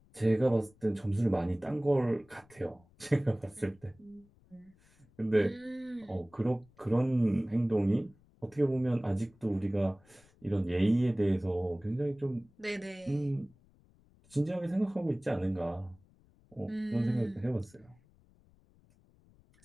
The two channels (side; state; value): left; noise; rumble, 30 dB below the sound